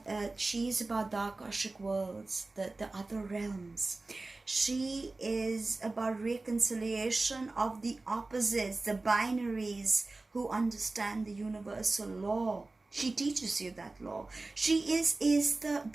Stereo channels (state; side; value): quieter; left; 3.3 dB